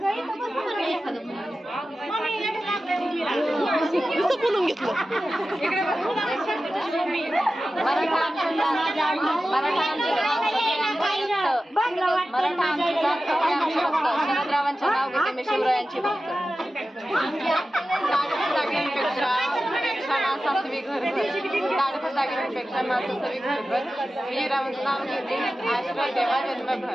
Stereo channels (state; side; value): normal; both; correlation 0.94